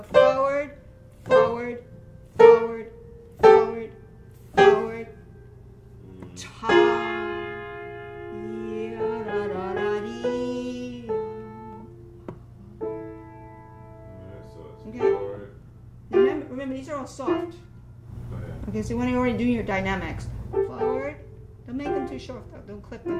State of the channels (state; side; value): identical; both; correlation 1.00